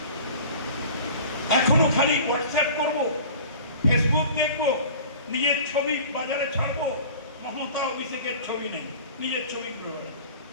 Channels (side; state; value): both; inverted; correlation -0.42